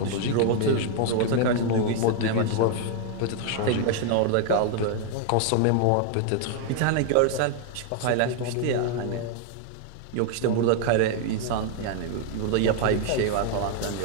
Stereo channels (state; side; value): different; both; correlation 0.00